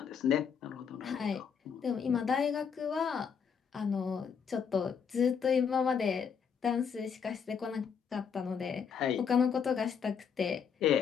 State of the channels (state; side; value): quieter; right; 6.8 dB